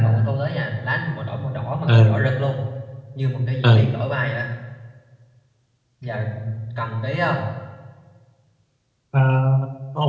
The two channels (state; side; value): identical; both; correlation 1.00